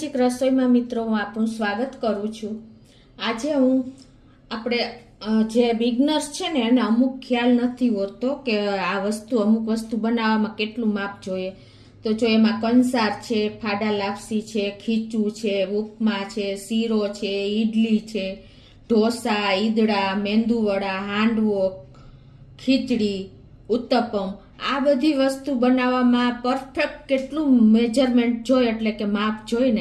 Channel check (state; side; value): identical; both; correlation 1.00